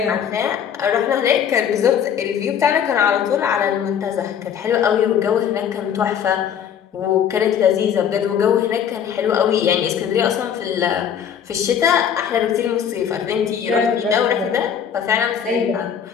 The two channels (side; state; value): right; quieter; 8.4 dB